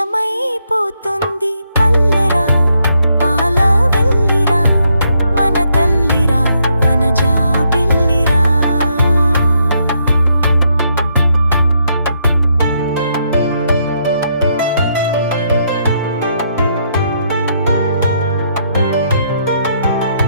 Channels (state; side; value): inverted; both; correlation -0.76